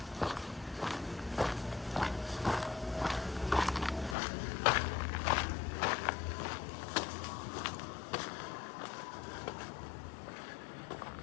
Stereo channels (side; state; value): right; drops out; at 4.2 s